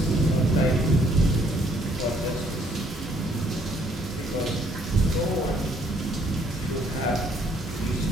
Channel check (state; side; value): normal; both; correlation 0.66